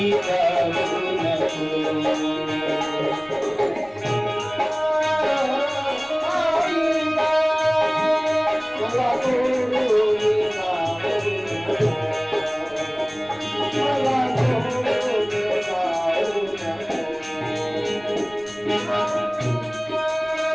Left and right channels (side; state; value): left; noise; rumble, 26 dB below the sound